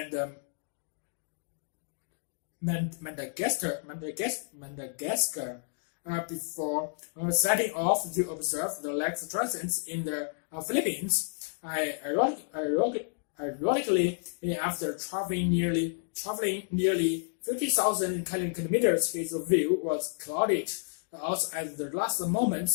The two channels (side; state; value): right; silent; digital silence